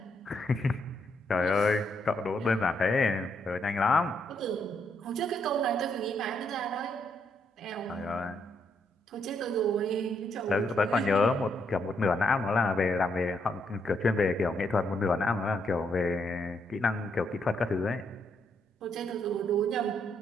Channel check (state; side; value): normal; both; correlation 0.76